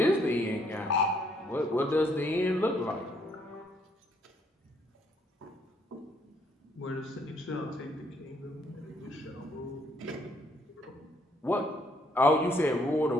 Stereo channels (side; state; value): both; normal; correlation 0.68